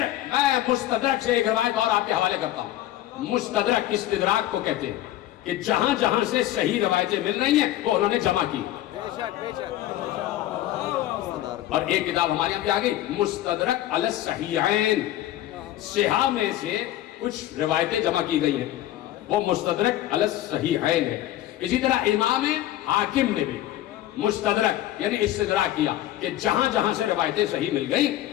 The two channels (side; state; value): right; quieter; 13.9 dB